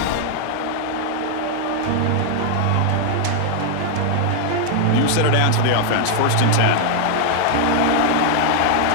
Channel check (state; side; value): different; both; correlation 0.00